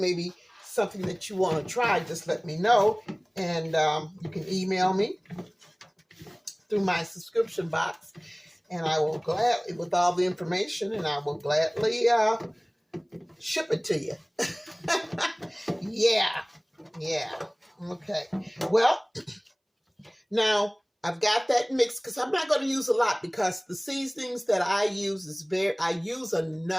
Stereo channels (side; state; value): both; identical; correlation 1.00